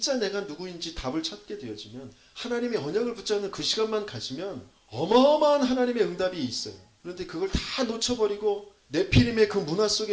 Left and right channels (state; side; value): identical; both; correlation 1.00